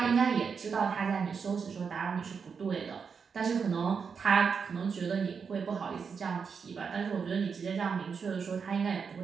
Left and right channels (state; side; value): quieter; left; 6.0 dB